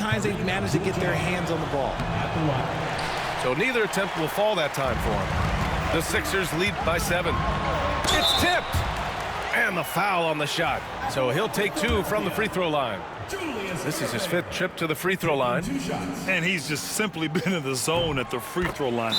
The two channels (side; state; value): both; identical; correlation 1.00